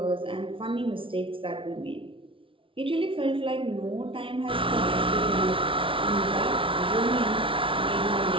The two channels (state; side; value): late; left; 0.25 ms